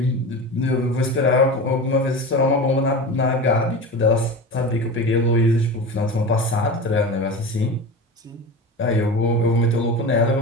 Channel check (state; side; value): normal; both; correlation 0.29